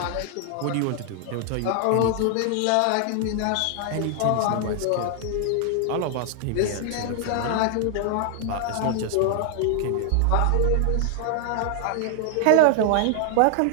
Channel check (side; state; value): both; different; correlation 0.00